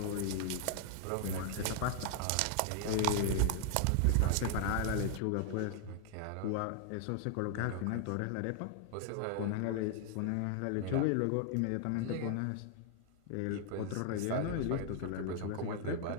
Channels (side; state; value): both; different; correlation 0.00